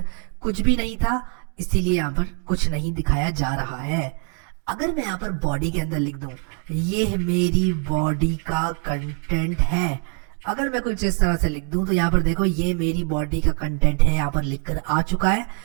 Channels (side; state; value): left; quieter; 37.9 dB